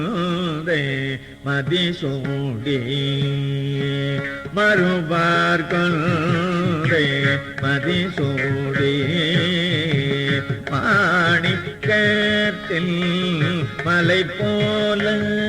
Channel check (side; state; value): both; identical; correlation 1.00